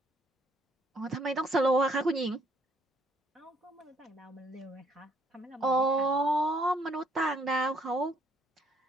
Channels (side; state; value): both; normal; correlation 0.67